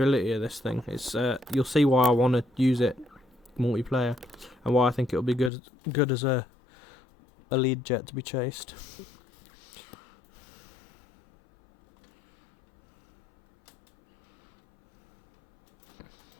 of this thing. It's you'll see why I want to use it multiplayer, and why I think it'll be good as a lead jet to be chased.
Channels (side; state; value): right; drops out; at 5.5 s